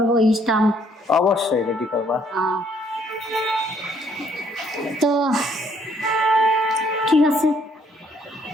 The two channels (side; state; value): both; normal; correlation 0.66